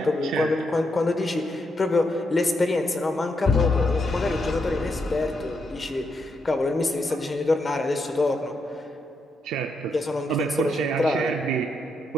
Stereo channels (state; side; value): normal; both; correlation 0.81